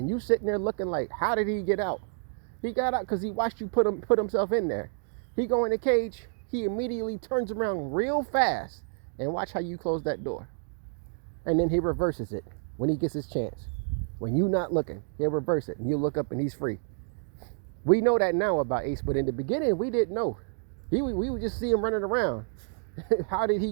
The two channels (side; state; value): left; silent; 57 dB below the other